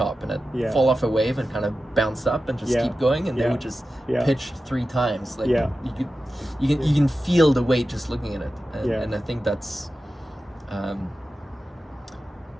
and it fall off a wave and kind of bounce up and just keep going, and they would just pitch 3 times. Like you can feel the weight just looking at it, and I think that's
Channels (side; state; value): both; normal; correlation 0.93